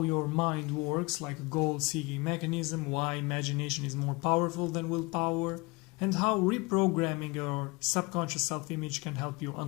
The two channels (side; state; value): right; quieter; 26.0 dB